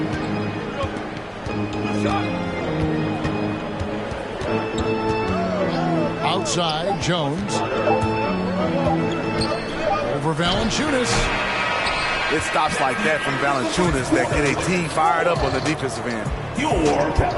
Outside, Jones. Over Valanciunas. It stops like that from Valanciunas that get a team fired up on the defensive end. Your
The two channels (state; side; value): identical; both; correlation 1.00